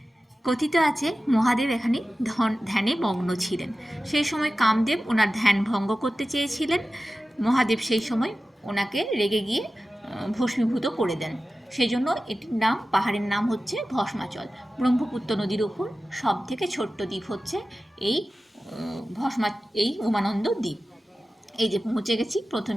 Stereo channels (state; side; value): normal; both; correlation 0.95